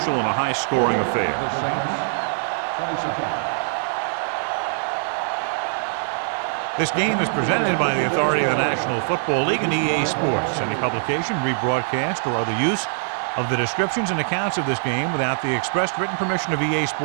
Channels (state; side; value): silent; left; 58 dB below the other